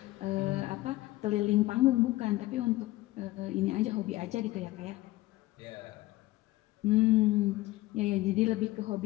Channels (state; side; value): quieter; right; 18.2 dB